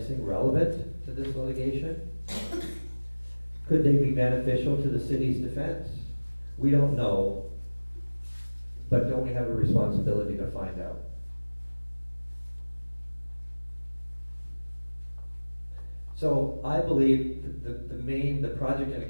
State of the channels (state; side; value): inverted; both; correlation -1.00